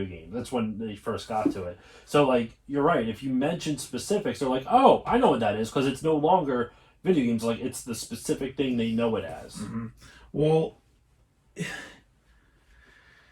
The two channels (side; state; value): both; identical; correlation 1.00